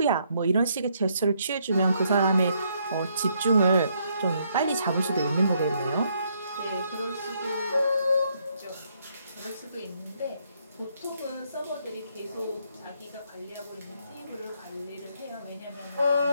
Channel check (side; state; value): both; inverted; correlation -0.72